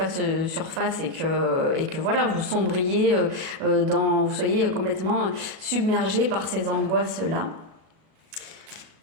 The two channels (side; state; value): left; late; 37 ms